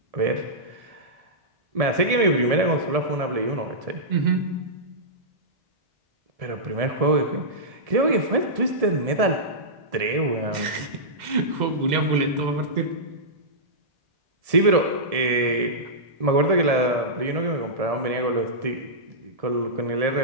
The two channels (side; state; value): left; late; 1.7 ms